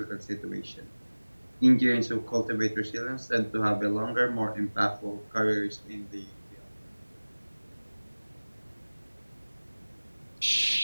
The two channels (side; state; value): both; inverted; correlation -1.00